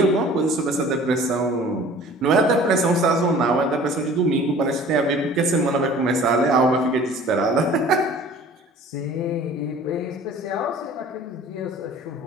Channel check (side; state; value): both; normal; correlation 0.47